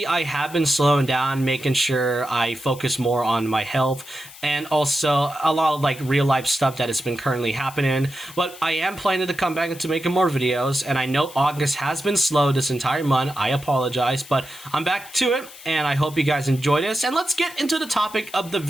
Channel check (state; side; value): noise; left; hiss, 18 dB below the sound